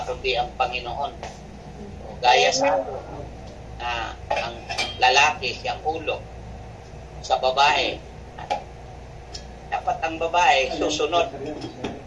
kundi ang Panginoon. O, gaya sa ang lalaki siyang ulo sa babae. Dapat ang babae susunod.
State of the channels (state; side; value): identical; both; correlation 1.00